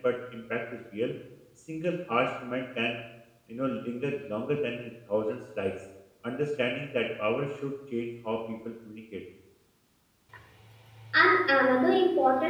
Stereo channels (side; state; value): both; identical; correlation 1.00